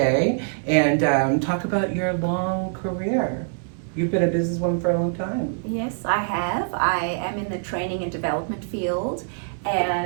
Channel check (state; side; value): silent; left; 63 dB below the other